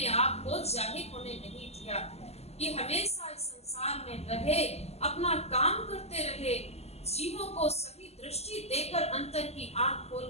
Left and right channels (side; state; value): right; late; 0.30 ms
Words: आप को जाहिर होने नहीं दिया। ये हमेशा इस संसार में रहे, अपना काम करते रहे, जीवों को सही दृष्टि देकर अंतर की आंख